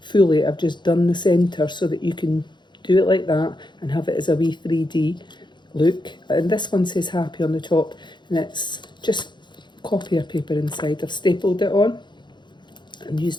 I've just done the centre so that you can do it like that and have it as a wee 3D look. And this one says happy on the top, and it's just copier paper inside. I've stapled it on and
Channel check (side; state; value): right; late; 0.22 ms